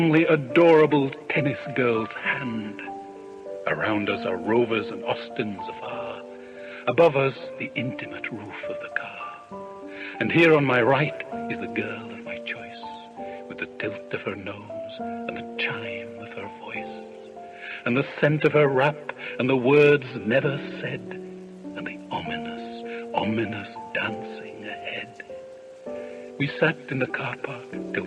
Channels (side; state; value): both; identical; correlation 1.00